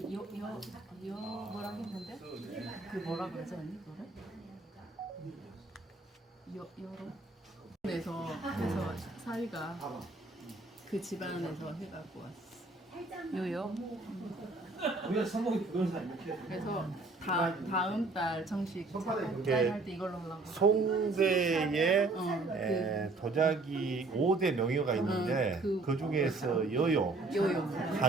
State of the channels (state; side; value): quieter; left; 3.3 dB